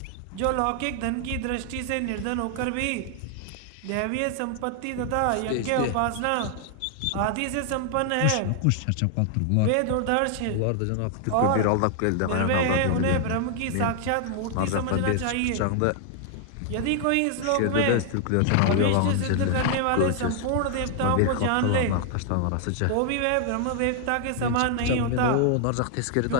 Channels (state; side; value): different; both; correlation 0.00